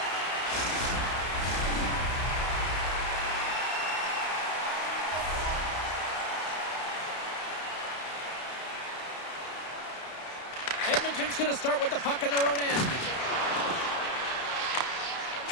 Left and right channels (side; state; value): right; late; 32 ms